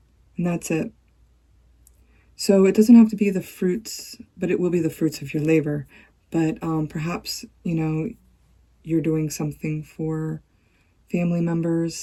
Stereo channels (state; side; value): identical; both; correlation 1.00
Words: And that's it. So it doesn't have to be the fruits, but it will be the fruits of your labor. But perhaps, you know, you're doing something for family